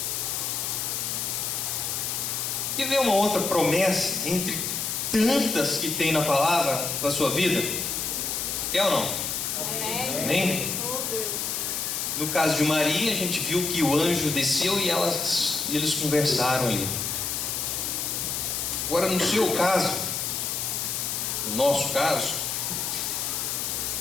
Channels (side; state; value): left; noise; hiss, 1 dB below the sound